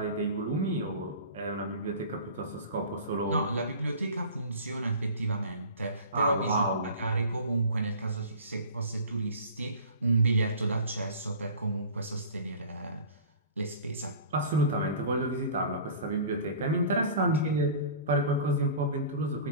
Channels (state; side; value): inverted; both; correlation -0.40